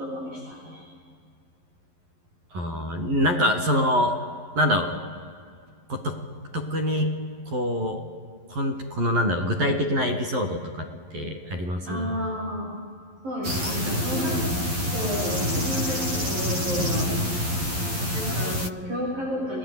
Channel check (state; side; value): late; left; 11 ms